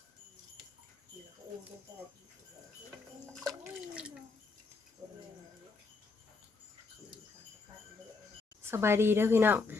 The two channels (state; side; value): quieter; right; 4.2 dB